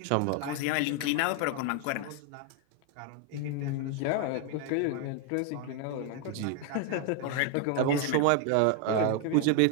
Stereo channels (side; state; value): both; different; correlation 0.01